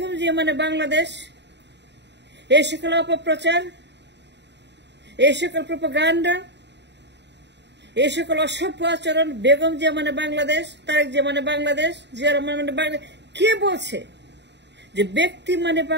জিয়া মানে বাংলাদেশ। এই সকল অপপ্রচার, এই সকল প্রোপাগান্ডা, এই সকল অসভ্য আচরণ, বেগম জিয়া মানে বাংলাদেশ, তারেক জিয়া মানে বাংলাদেশ, জিয়া রহমান মানে বাংলাদেশ। কে বলছে যে ব্যক্তি মানে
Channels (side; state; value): left; late; 0.51 ms